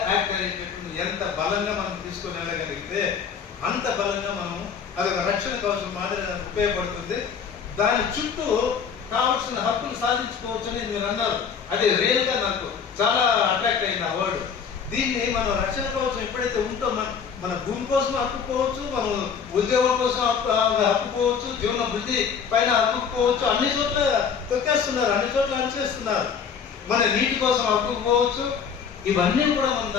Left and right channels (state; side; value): quieter; right; 6.8 dB